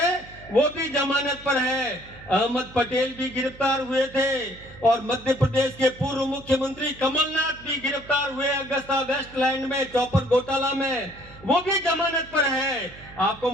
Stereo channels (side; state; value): right; noise; hum, 20 dB below the sound